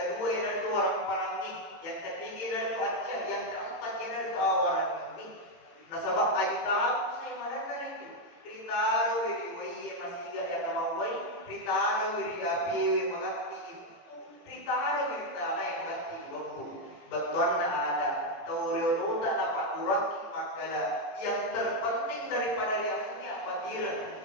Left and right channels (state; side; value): late; right; 18 ms